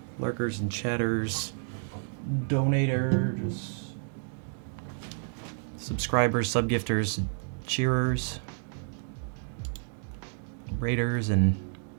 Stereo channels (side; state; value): left; silent; digital silence